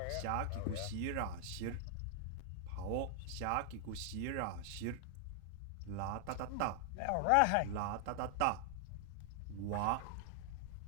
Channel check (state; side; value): different; both; correlation 0.00